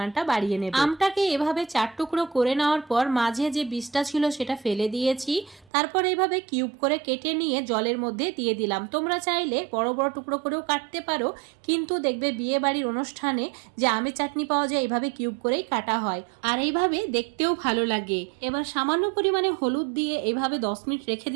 বাড়িয়ে নেবে। আমটাকে এভাবে 4 টুকরো করে নেওয়ার পর মাঝে যে বীজটা ছিল সেটা ফেলে দিয়েছি। তারপর এইভাবে কিউব করে কেটে নিয়ে জলের মধ্যে দিয়ে দিলাম। তোমরা চাইলে বড় বড় টুকরো করেও কাটতে পারো, কিন্তু দেখবে বিয়ে বাড়ির অনুষ্ঠানে যে আমের চাটনি পাওয়া যায় এইভাবে কিউব করেই কাটা হয়, আর এইভাবে দেখতেও ভালো লাগে। এবার সামান্য পরিমাণে হলুদ দিয়ে এইভাবে 10 মিনিট রেখে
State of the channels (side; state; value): left; drops out; at 5.7 s